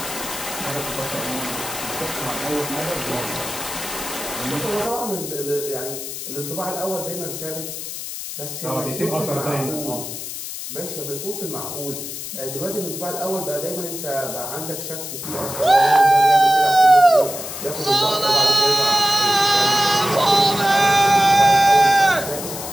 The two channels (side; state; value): left; noise; hiss, 8 dB below the sound